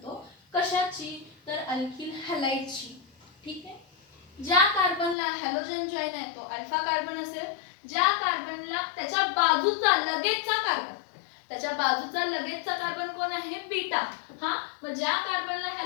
कशाची तर अल्किल हॅलाइडची ठीक आहे ज्या कार्बनला हॅलोजन जॉईन आहे तो अल्फा कार्बन असेल ज्या कार्बनला त्याच्या बाजूचा लगेचचा कार्बन कोण आहे बीटा हा मग ज्या कार्बनला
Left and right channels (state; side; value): drops out; right; at 5.2 s